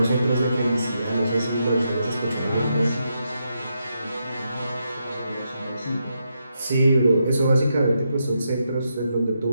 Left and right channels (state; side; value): inverted; both; correlation -0.83